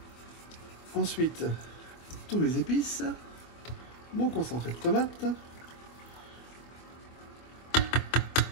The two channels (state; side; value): late; right; 24 ms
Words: Ensuite, tous mes épices. Mon concentré de tomate.